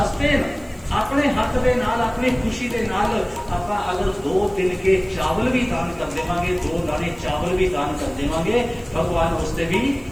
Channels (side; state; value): right; noise; hiss, 29 dB below the sound